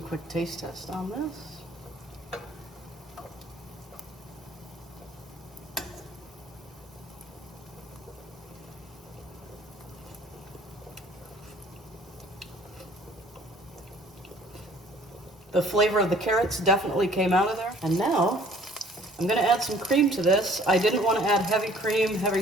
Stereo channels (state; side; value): normal; both; correlation 0.55